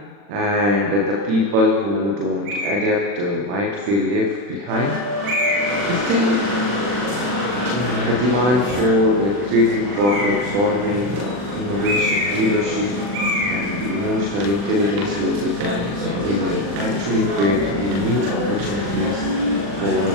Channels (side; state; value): left; late; 40 ms